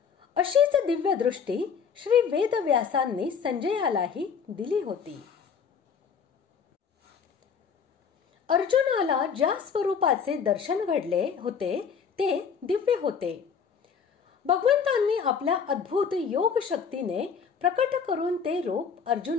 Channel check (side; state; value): right; quieter; 6.6 dB